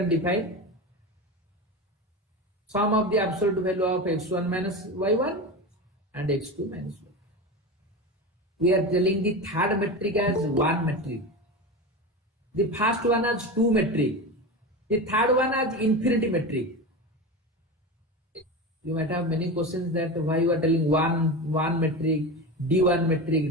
define sum of the absolute value of x1 minus y1 and x2 minus y2. We are telling the third metric as one metric. The first one as two metric. The third one as infinity metric. You might have many questions that why you are telling one metric, D1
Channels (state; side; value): normal; both; correlation 0.24